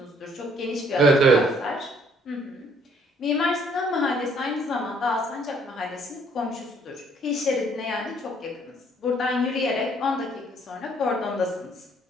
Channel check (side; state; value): both; normal; correlation 0.63